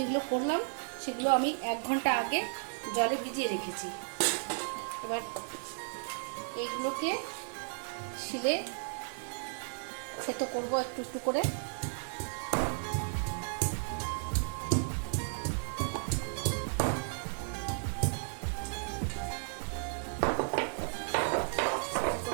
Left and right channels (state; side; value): silent; left; 55 dB below the other